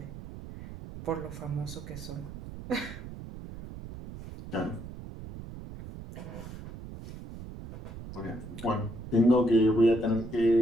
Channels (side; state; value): right; noise; rumble, 12 dB below the sound